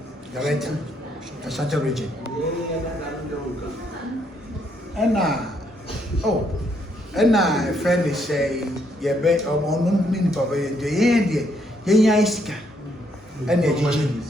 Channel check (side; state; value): both; normal; correlation 0.72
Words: director Ashanti region ana friend say ye be ono nipa ba ye de yenya isika ana ejiji